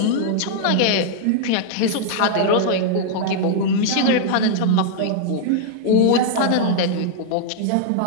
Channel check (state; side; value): different; both; correlation -0.01